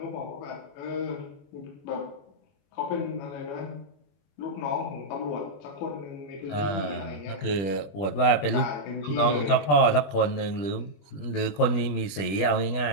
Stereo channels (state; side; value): late; right; 20 ms